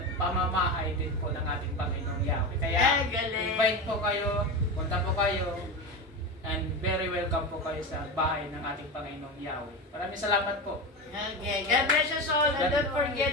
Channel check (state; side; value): normal; both; correlation 0.21